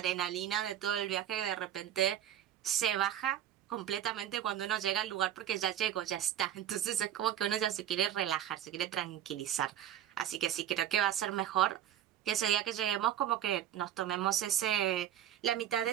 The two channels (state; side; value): quieter; left; 10.8 dB